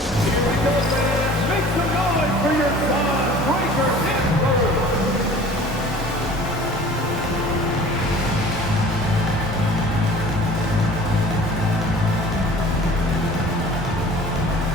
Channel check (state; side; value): normal; both; correlation 0.46